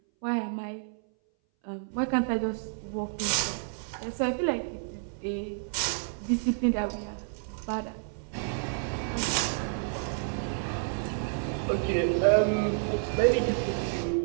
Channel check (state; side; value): silent; left; 58 dB below the other